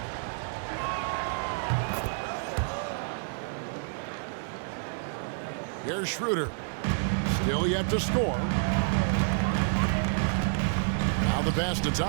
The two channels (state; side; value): silent; left; digital silence